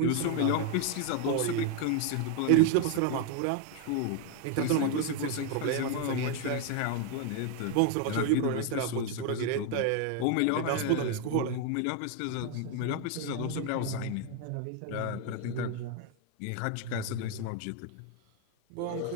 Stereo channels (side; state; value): both; different; correlation 0.01